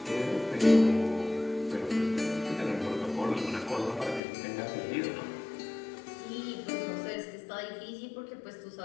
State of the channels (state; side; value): drops out; right; at 4.2 s